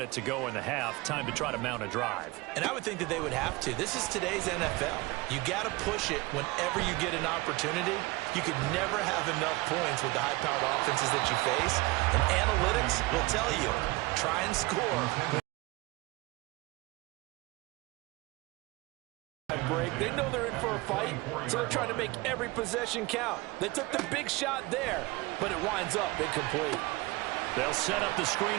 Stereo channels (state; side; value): quieter; left; 22.4 dB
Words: to go in the half. Time to try to mount a drive. And I would think that they would have to. This is today's NFL. You got to push it whenever you get an opportunity. You could never have enough points with the high-powered offenses that you face. And analytics will tell you, try and score. Break. They know they're in for a fight, so they're trying to make every possession count. They took the big shot there, but it winds up incomplete. They'll set up the